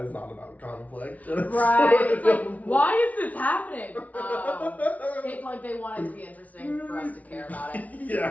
is not about conflict. Right. It's like, why is this happening? It's like they want it to be interesting for us to care about it.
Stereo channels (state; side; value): late; right; 0.070 ms